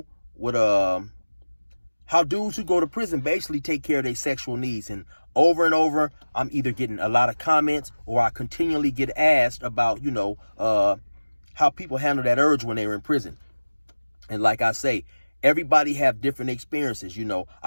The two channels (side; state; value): both; inverted; correlation -1.00